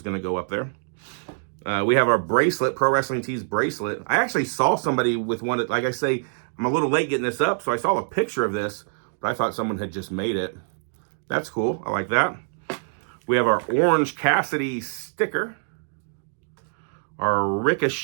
going to go up there. We have our bracelet, Pro Wrestling Tees bracelet. I actually saw somebody with one. Like I say, I'm a little late getting this up, so I saw a picture of this, but I thought someone had just made it. That's cool. I like that. We have our Orange Cassidy sticker, our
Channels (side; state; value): left; silent; digital silence